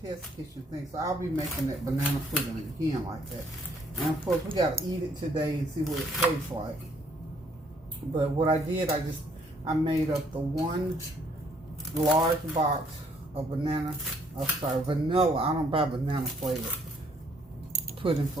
test kitchen thing. So I'll be making that banana pudding again like that. And of course, we gotta eat it today and see what it tastes like. But what I did, I made up the 1 large box of vanilla. I don't buy banana flavored pudding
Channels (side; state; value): both; normal; correlation 0.66